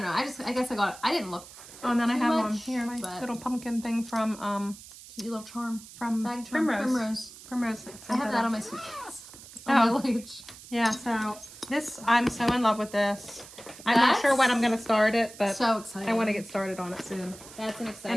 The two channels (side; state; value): right; noise; hiss, 17 dB below the sound